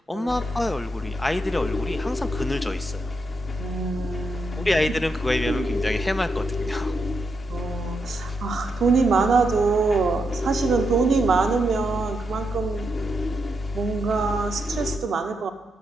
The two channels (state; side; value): normal; both; correlation 0.82